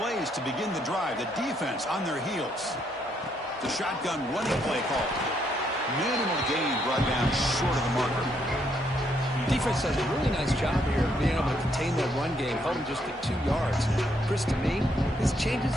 to begin the drive. The defense on their heels. The shotgun running play call. Minimal gain brought down short of the marker. Defense does a really nice job here of being able to contain that run game, held him just at 2 yards. Chris, to me, this changes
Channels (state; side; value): normal; both; correlation 0.73